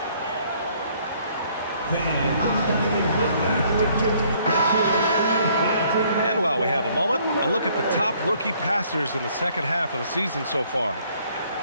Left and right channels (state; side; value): inverted; both; correlation -0.63